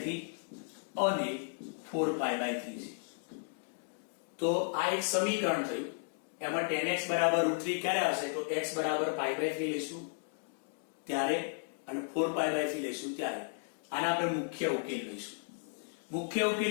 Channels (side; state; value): right; silent; digital silence